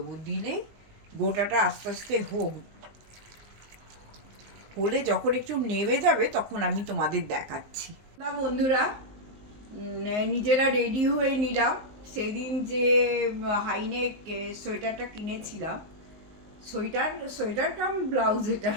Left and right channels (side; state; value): left; late; 19 ms